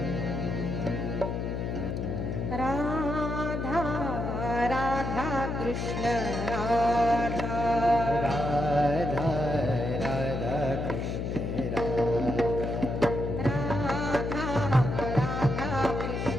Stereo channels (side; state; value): left; noise; hum, 2 dB below the sound